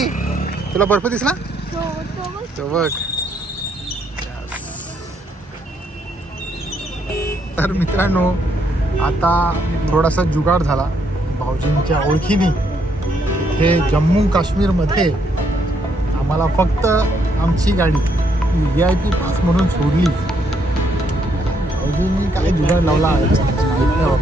तुला बर्फ दिसला? तो बघ. तर मित्रांनो, आता थोडासा जुगाड झाला भाऊजींच्या ओळखीने. इथे जम्मू काश्मीरमध्ये आम्हाला फक्त आमची गाडी VIP पास म्हणून सोडली. भाऊजींनी काय जुगाड लावला माहीत नाही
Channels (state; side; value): normal; both; correlation 0.73